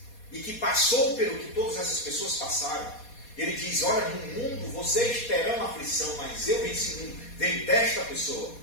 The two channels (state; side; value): late; right; 4.2 ms